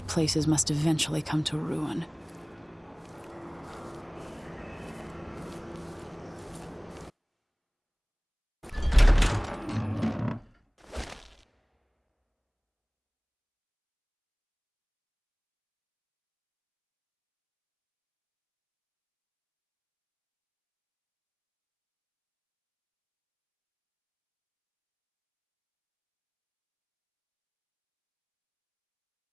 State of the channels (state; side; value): identical; both; correlation 1.00